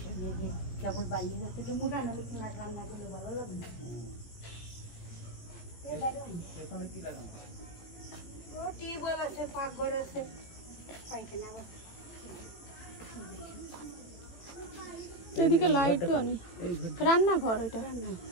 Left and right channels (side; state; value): right; late; 17 ms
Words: কেবল বাইরে যাচ্ছে তো মোটা না রান্না করলে ভালো লাগবে। টিউবওয়েল আছে, পাকঘর আছে, পাইখানা আছে। এদিকে লাইট তো নেই, রান্নাঘর ওইটা।